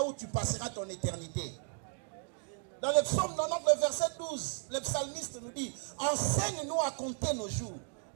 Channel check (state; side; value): quieter; left; 36.9 dB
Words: où tu passeras ton éternité. Dans le psaume 90, le verset 12, le psalmiste nous dit, enseigne-nous à compter nos jours,